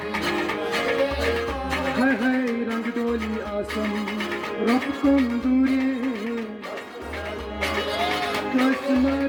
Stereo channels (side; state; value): both; identical; correlation 1.00